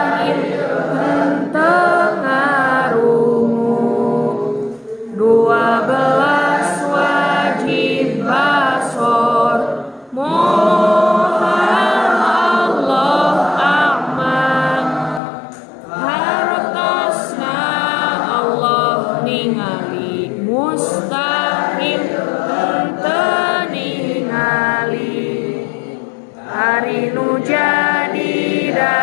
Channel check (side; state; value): right; drops out; at 15.2 s